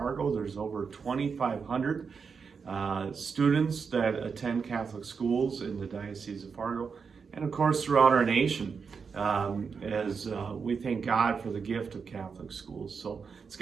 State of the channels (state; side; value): quieter; left; 5.7 dB